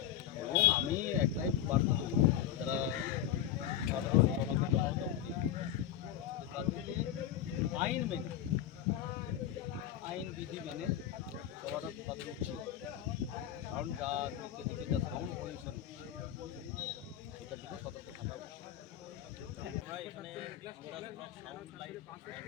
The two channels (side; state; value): right; quieter; 10.9 dB